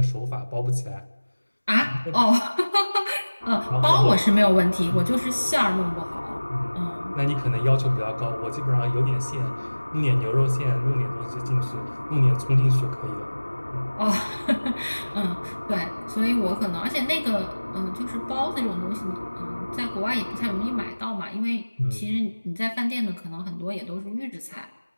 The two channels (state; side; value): inverted; both; correlation -1.00